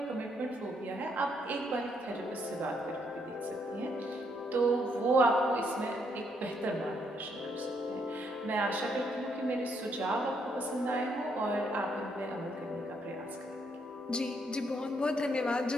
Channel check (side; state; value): both; normal; correlation 0.73